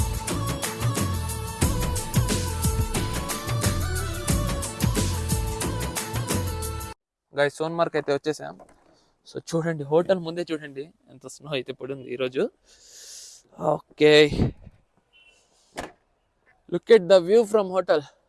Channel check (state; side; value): identical; both; correlation 1.00